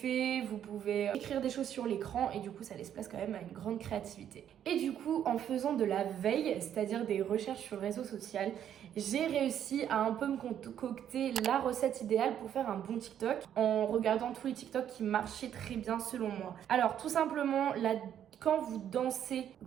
vous pouvez écrire des choses sur l'écran et du coup ça laisse place quand même à une grande créativité. Et du coup, en faisant de la veille, c'est-à-dire des recherches sur le réseau social, j'ai réussi à un peu me concocter la recette idéale pour faire un bon TikTok en regardant tous les TikTok qui marchaient très bien selon moi. Alors tout simplement, quand vous dansez,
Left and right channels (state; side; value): quieter; left; 9.9 dB